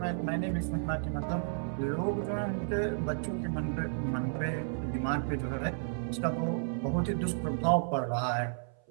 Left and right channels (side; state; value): left; silent; 56 dB below the other